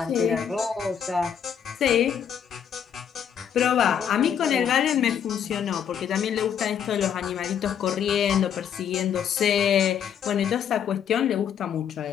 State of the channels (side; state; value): right; quieter; 8.4 dB